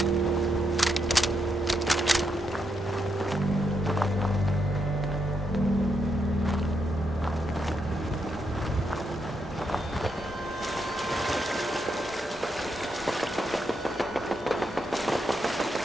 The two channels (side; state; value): both; normal; correlation 0.80